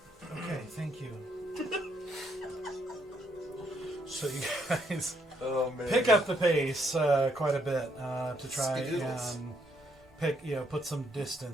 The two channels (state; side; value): normal; both; correlation 0.73